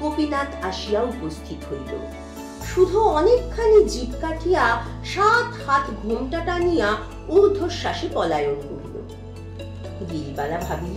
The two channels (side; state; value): both; identical; correlation 1.00